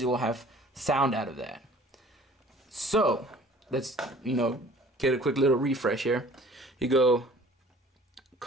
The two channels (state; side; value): normal; both; correlation 0.51